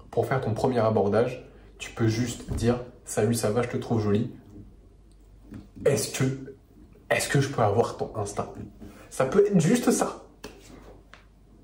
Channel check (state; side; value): identical; both; correlation 1.00